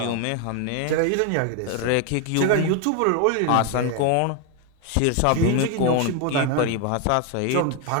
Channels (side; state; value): both; different; correlation 0.01